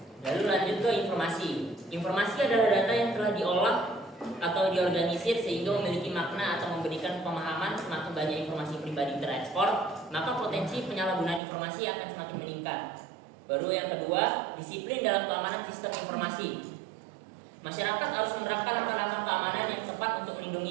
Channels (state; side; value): drops out; left; at 11.4 s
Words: Lalu lanjut ke informasi. Informasi adalah data yang telah diolah atau diorganisir sehingga memiliki makna atau memberikan pemahaman. Semakin banyak informasi pribadi terekspor, maka potensi penyalahgunaan informasi akan semakin meningkat. Baru yang kedua, disiplin dalam keamanan sistem informasi. Masyarakat harus menerapkan langkah-langkah keamanan yang tepat untuk